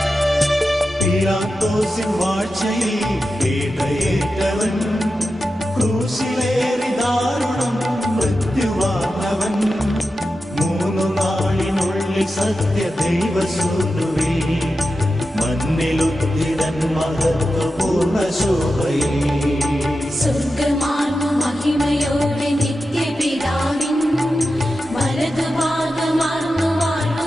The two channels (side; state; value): both; normal; correlation 0.91